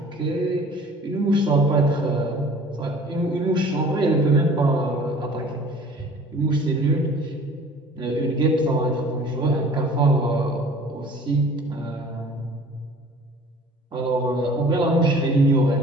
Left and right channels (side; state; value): both; normal; correlation 0.48